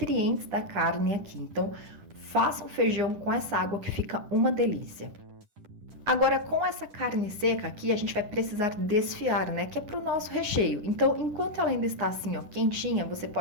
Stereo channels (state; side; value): late; left; 10 ms